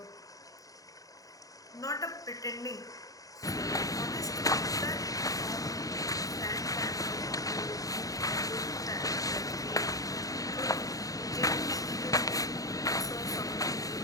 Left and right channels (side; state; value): right; late; 0.17 ms